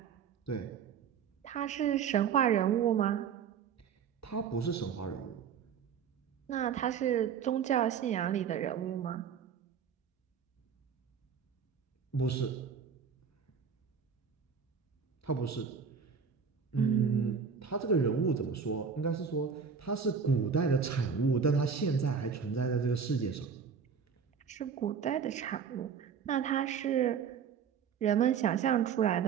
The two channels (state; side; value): quieter; left; 6.7 dB